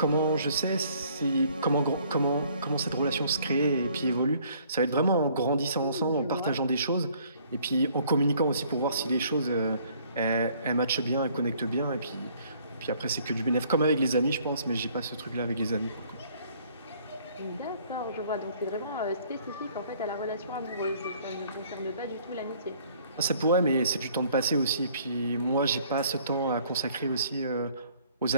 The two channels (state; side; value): inverted; both; correlation -0.60